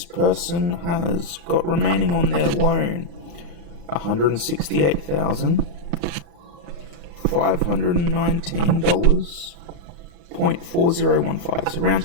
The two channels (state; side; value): late; left; 35 ms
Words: person has got remaining on their loan $168,519.4015. So round